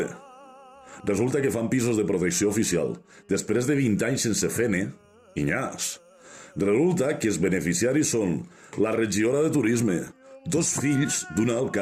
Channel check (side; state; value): both; identical; correlation 1.00